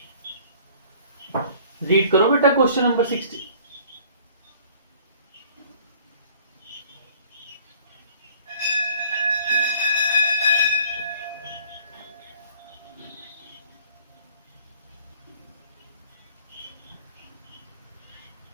read करो बेटा क्वेश्चन नंबर 60।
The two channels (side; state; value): both; inverted; correlation -0.53